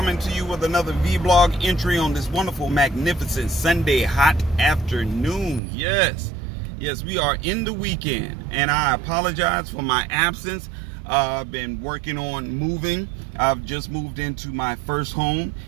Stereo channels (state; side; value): drops out; left; at 5.6 s